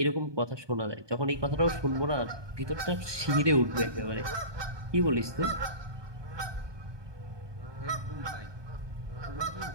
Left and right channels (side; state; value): left; late; 1.2 ms